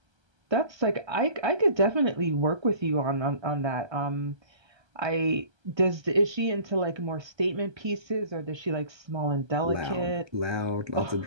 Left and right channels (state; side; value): late; left; 1.3 ms